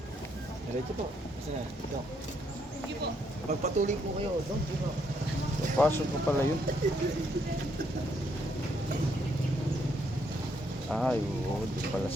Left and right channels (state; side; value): normal; both; correlation 0.73